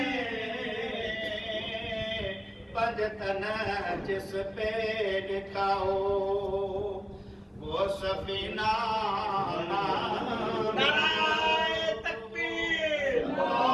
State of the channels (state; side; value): identical; both; correlation 1.00